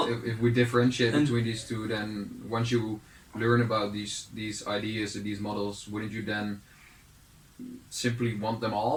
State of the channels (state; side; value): identical; both; correlation 1.00